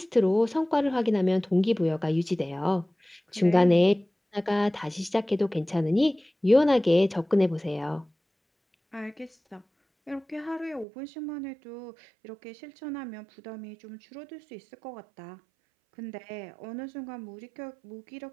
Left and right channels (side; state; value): left; drops out; at 10.9 s